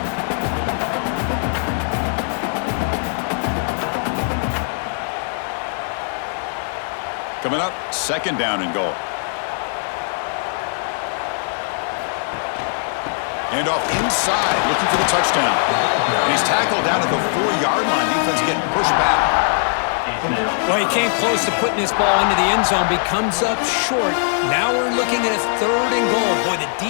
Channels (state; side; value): silent; right; digital silence